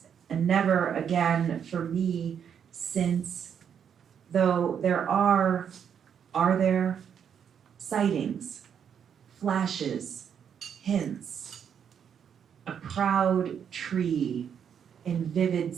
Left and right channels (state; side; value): quieter; left; 8.0 dB